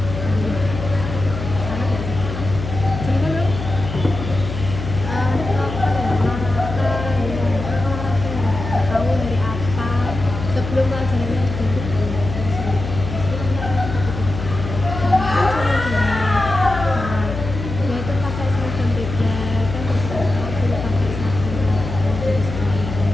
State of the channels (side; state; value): left; noise; hum, 7 dB below the sound